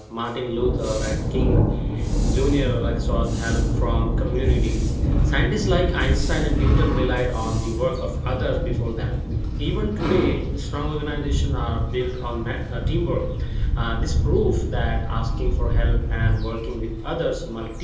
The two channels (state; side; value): identical; both; correlation 1.00